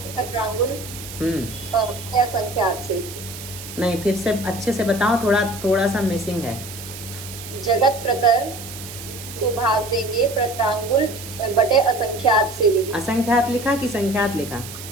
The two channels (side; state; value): right; noise; hiss, 12 dB below the sound